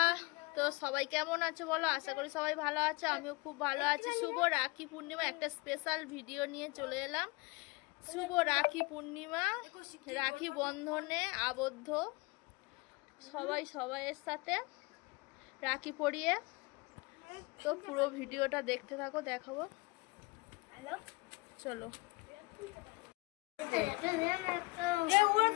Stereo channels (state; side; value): quieter; right; 25.4 dB